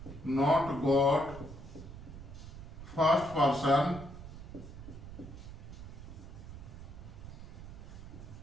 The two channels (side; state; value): right; noise; rumble, 12 dB below the sound